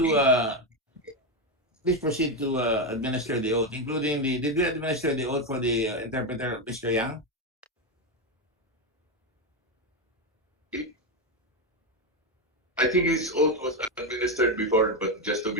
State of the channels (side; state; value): both; normal; correlation 0.09